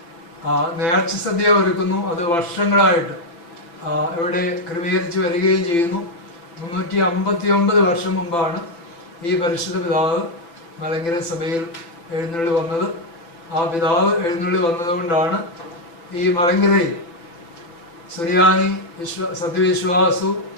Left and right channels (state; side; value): late; right; 5.9 ms